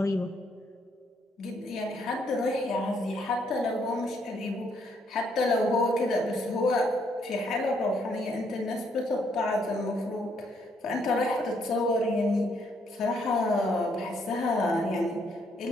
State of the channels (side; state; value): both; normal; correlation 0.71